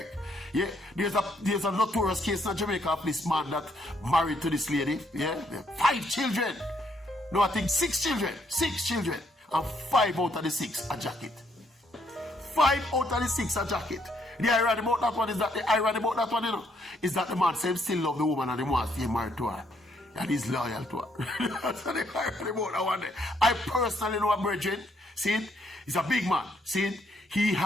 Yeah, there's a notorious case in Jamaica of this man that married to this lady. Yeah, 5 children. No, I think 6 children. 6 children. And 5 out of the 6 a jacket. 5 out of the 6 a jacket. The irony about that one is that you know, is that the man says still love the woman and he wants to get married to her. And he's loyal to her. That's the irony about that one. I personally know a brethren. See it? He's a big man. See it? He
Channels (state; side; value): normal; both; correlation 0.71